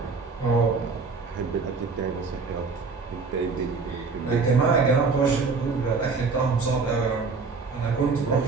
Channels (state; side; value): quieter; left; 4.5 dB